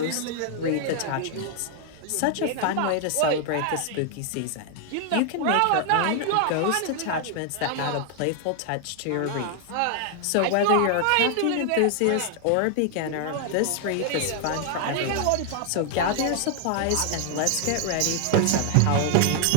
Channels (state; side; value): different; both; correlation 0.00